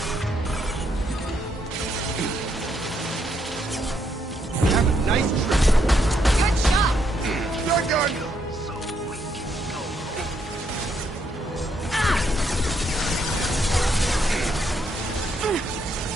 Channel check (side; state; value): both; normal; correlation 0.75